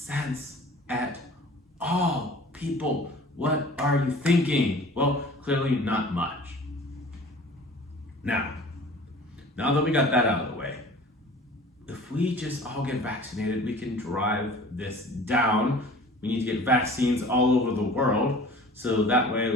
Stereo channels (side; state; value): both; normal; correlation 0.45